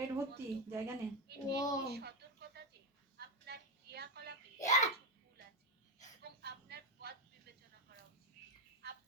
ভর্তি, জায়গা নেই। ও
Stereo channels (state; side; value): normal; both; correlation 0.09